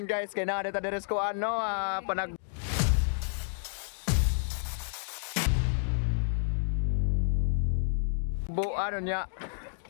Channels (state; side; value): silent; right; digital silence